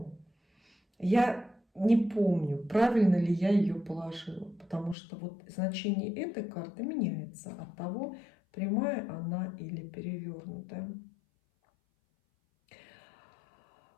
я не помню, правильно ли я ее положила, потому что вот значение этой карты меняется от того, прямая она или перевернутая.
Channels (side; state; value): right; drops out; at 5.0 s